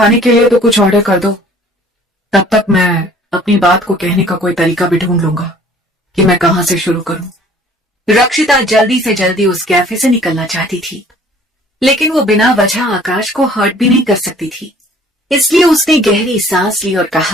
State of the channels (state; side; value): normal; both; correlation 0.53